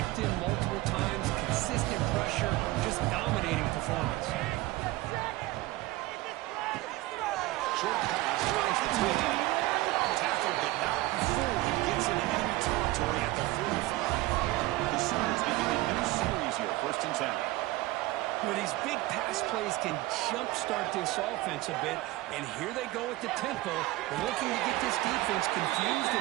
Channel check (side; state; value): left; quieter; 18.6 dB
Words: him multiple times. Consistent pressure. Just dominating performance. Short pass finds the tight end. Tackled, but not before he gets into enemy territory at the 45. The Sooners begin a new series here, 1st and 10. Well, these big pass plays can jumpstart this offense a bit, and here they go at the tempo, looking to get this defense confused